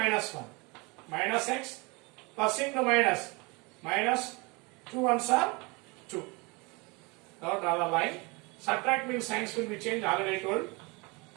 1, minus x, plus into minus, minus 2 ones are 2. Now draw the line. Subtract means signs will be changed, already told.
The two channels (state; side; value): quieter; left; 27.5 dB